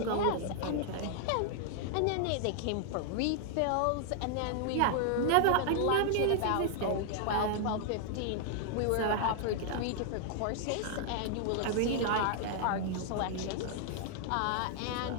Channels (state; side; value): different; both; correlation 0.00